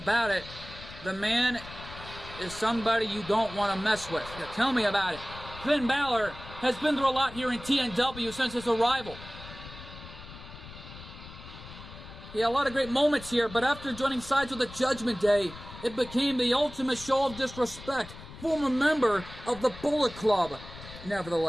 it, the man is somebody you don't want to mess with. Yeah, tell me about it. Finn Balor has been through a lot here in TNW since his arrival. He had a lot of great moments here, but after joining sides with the Judgment Day, it became the ultimate show of disrespect. Former member of the Bullet Club,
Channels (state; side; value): noise; left; rumble, 15 dB below the sound